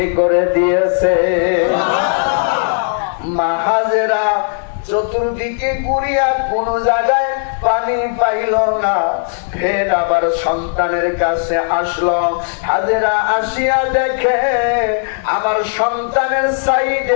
করে দিয়েছে। মা হাজেরা চতুর্দিকে ঘুরিয়া কোন জায়গায় পানি পাইল না, ফের আবার সন্তানের কাছে আসলো। হাজেরা আসিয়া দেখে আমার সন্তানের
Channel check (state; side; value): silent; right; digital silence